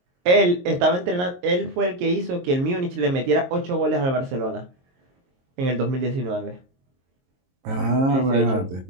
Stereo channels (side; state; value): left; late; 22 ms